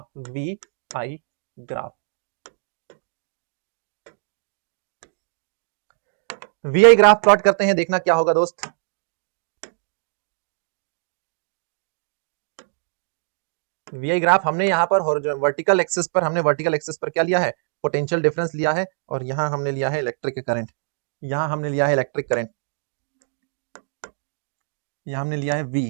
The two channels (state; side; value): silent; left; digital silence